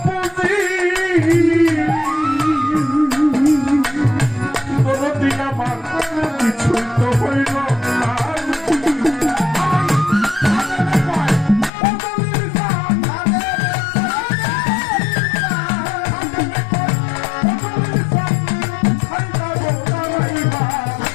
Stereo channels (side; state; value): right; drops out; at 11.7 s